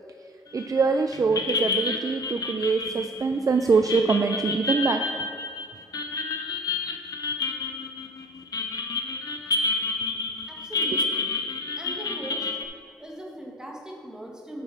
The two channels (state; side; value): normal; both; correlation 0.39